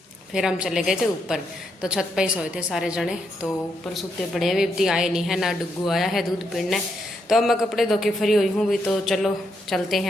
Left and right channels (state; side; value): normal; both; correlation 0.79